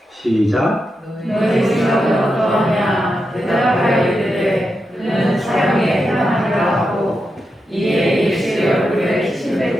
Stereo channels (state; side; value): normal; both; correlation 0.87